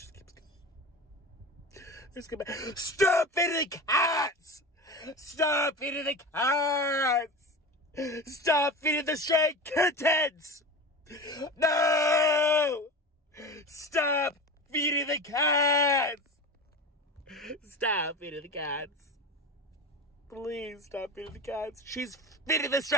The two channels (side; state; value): both; normal; correlation 0.28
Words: keeps going. There's gonna be... Stop feeding the cats. Stop feeding the cats. Stop feeding the stray kittens. No. Stop feeding the cats. Stop feeding the cats. Please stop feeding the cats. She's feeding the